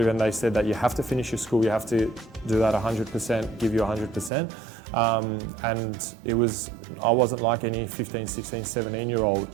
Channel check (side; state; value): left; drops out; at 4.3 s